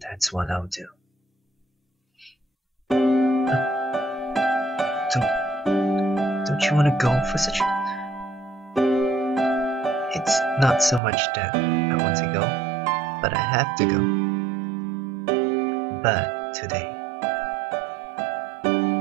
what I'll do. Don't you want to go for such a... It's not so much that I want to go, but I have to go. But today, I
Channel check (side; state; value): left; drops out; at 11.0 s